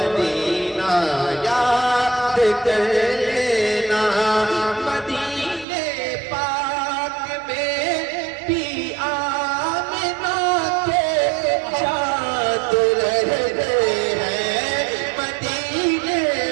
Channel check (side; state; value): left; drops out; at 5.7 s